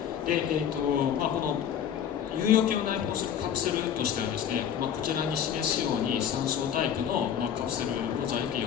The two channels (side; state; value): right; quieter; 9.0 dB